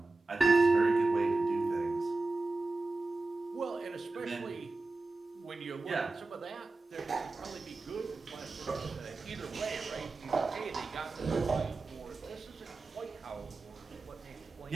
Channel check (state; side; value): quieter; left; 3.4 dB